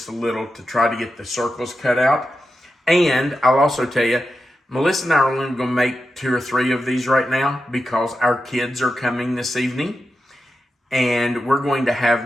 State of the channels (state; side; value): normal; both; correlation 0.90